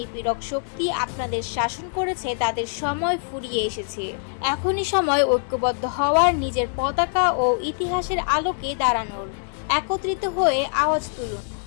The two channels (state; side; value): silent; right; 58 dB below the other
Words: শক্তি আপনাদের শাসন করেছে তাদের সময় ফুরিয়ে এসেছে। এখনই সময় ঐক্যবদ্ধ হওয়ার, নিজের পতাকা ও ইতিহাসের আলোকে দাঁড়ানোর। একত্রিত হয়ে আওয়াজ তুলুন,